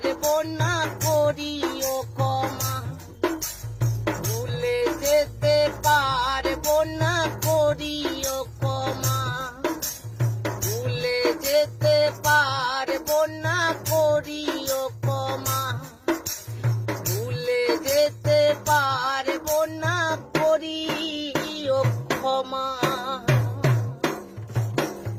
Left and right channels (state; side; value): identical; both; correlation 1.00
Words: পারবো না করিও ক্ষমা, ভুলে যেতে পারবো না করিও ক্ষমা, ভুলে যেতে পারবো না করিও ক্ষমা, ভুলে যেতে পারবো না করিও ক্ষমা।